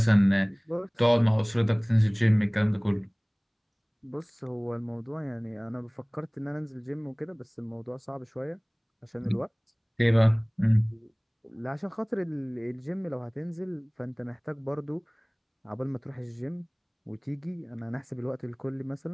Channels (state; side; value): identical; both; correlation 1.00